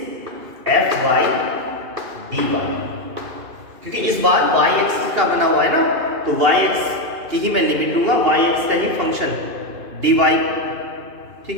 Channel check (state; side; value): late; left; 2.4 ms